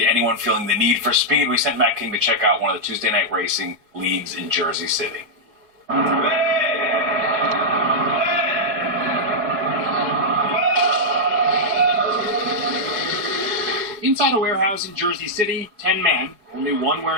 anyone feeling the need for speed. We sent Matt King to check out one of the Tuesday night racing leagues in Jersey City. Inside a warehouse in Jersey City, 10 men, only one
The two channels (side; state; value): left; late; 4.7 ms